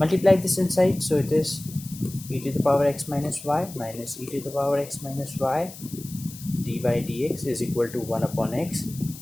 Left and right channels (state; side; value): noise; left; hiss, 16 dB below the sound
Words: this inside, so it is e to the power x minus y minus e to the power x minus y dy dx is equal to 1 upon x